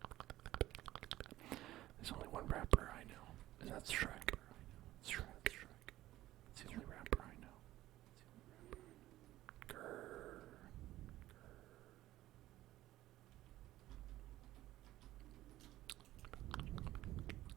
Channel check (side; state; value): left; quieter; 15.3 dB